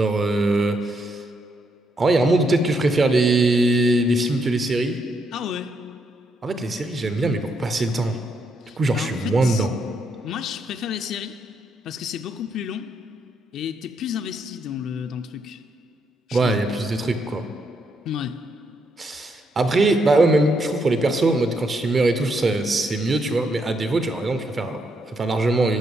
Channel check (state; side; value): normal; both; correlation 0.77